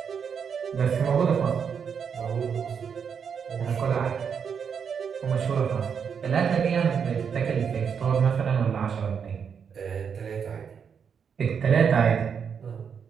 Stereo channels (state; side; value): quieter; left; 6.9 dB